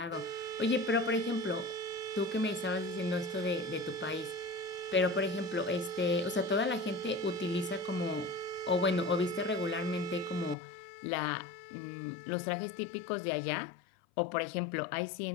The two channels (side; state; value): right; drops out; at 10.6 s